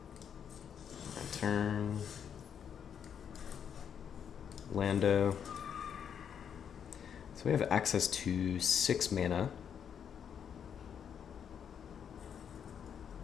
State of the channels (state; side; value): quieter; right; 8.0 dB